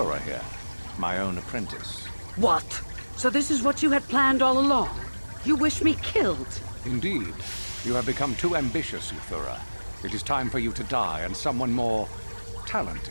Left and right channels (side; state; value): both; inverted; correlation -1.00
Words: here, my own apprentice. What? So this is what you had planned all along? You wish me killed? Indeed. You have become too ambitious, Euthura. It is time for you to die and someone more